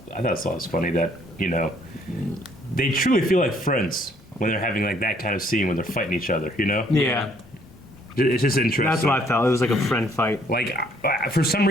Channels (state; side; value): normal; both; correlation 0.64